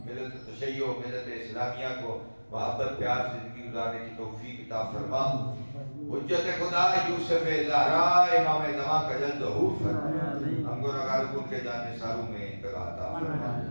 ملت تشیع ملت اسلامیہ کو محبت پیار زندگی گزارنے کی توفیق عطا فرما، حجت خدا یوسف زہرا امام زمان کا جلد ظہور فرما، ہم گناہگار کو ان کے جان نثاروں میں انتقال عطا فرما،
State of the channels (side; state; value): both; inverted; correlation -1.00